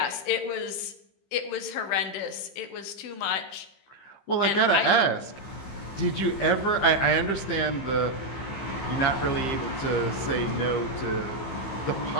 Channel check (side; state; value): right; late; 15 ms